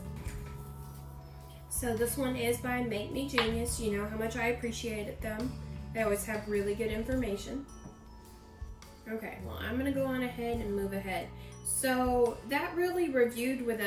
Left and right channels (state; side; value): identical; both; correlation 1.00